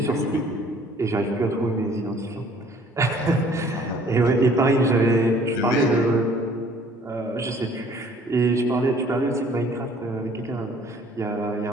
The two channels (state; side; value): normal; both; correlation 0.56